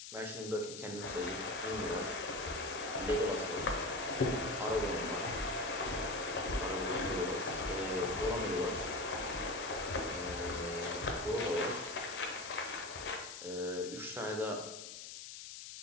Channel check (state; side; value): noise; left; hiss, 10 dB below the sound